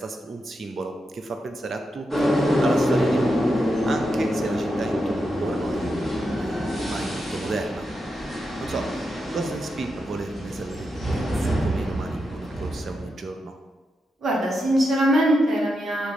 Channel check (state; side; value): normal; both; correlation 0.86